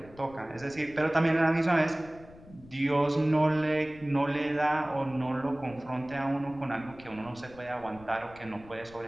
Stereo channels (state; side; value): noise; left; rumble, 21 dB below the sound